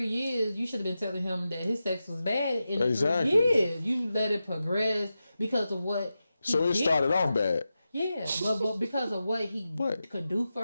years, you should have been telling him that his sex was bad in the 3 years. You let it progress because of what he So it started off bad. Yeah, but because of what he could do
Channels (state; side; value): inverted; both; correlation -0.91